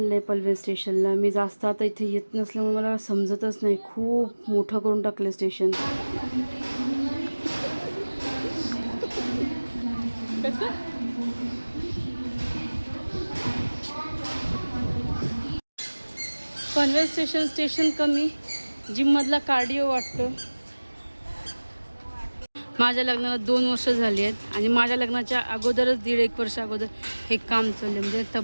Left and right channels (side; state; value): both; inverted; correlation -1.00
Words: आहे पनवेल स्टेशनला. मी जास्त आता इथे येत नसल्यामुळे मला समजतच नाही. खूप मोठं करून टाकलं स्टेशन. पनवेल स्टेशन कमी, जिममधला कार्डिओ वाटतो. माझ्या लग्नाला 2 वर्ष झाली आहेत आणि माझ्या लग्नाच्या अगोदरच 1.5 वर्ष अगोदर हे काम चालले. म्हणजे